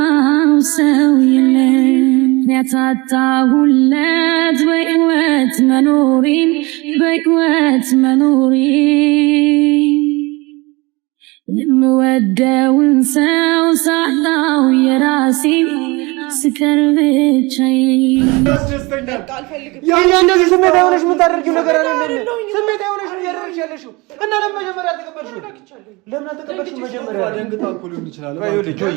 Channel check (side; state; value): left; quieter; 24.7 dB